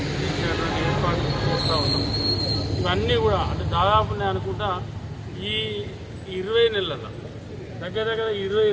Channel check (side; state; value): both; identical; correlation 1.00